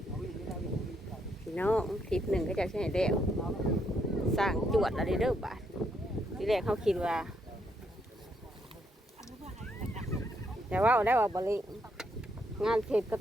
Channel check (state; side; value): normal; both; correlation 0.75